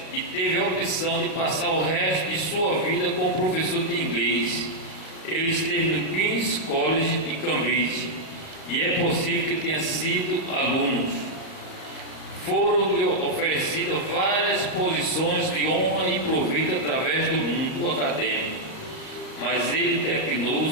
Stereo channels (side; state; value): right; late; 37 ms